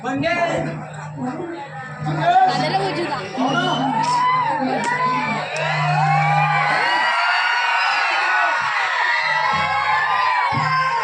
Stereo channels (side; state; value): both; identical; correlation 1.00